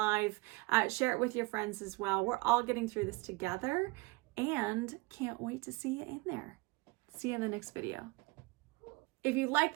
Share it with your friends as well. We're all getting through this together, and can't wait to see you in there. See you in the next video. If you like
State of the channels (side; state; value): left; quieter; 24.4 dB